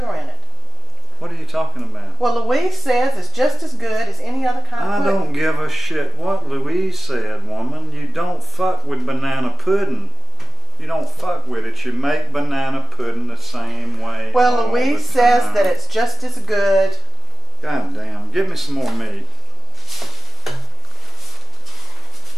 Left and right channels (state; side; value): normal; both; correlation 0.84